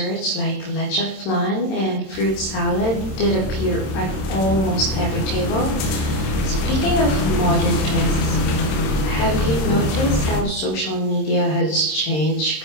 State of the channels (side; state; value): right; late; 27 ms